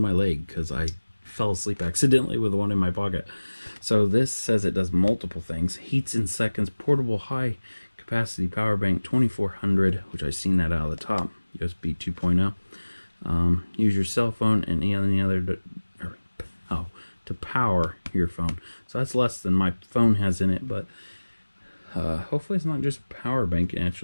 leg because I fell asleep accidentally with one in my pocket. So this says it does multiple things. Heats in seconds, portable high capacity power bank, 2400, which I've seen that out of the top, USB 2.0. Use your cell phone and any other to power your phone. So that's less than my phone has in it, but hopefully it's not just a power bank. It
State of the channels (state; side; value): inverted; both; correlation -1.00